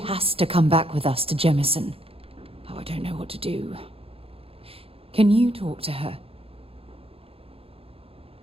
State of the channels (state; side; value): late; left; 0.27 ms